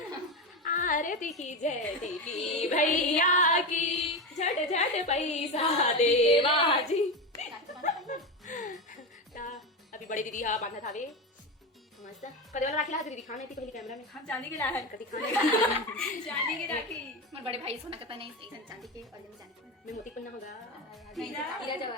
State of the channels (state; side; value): normal; both; correlation 0.18